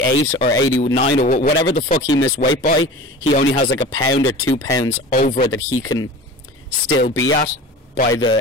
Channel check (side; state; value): both; normal; correlation 0.37